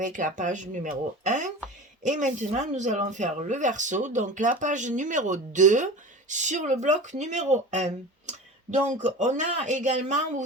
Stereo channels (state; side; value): normal; both; correlation 0.33